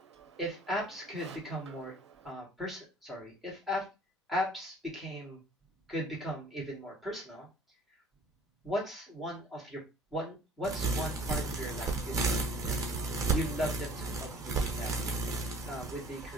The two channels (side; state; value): both; normal; correlation 0.52